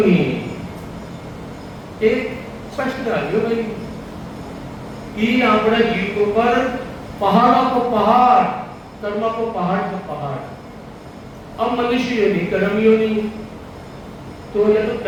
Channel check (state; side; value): identical; both; correlation 1.00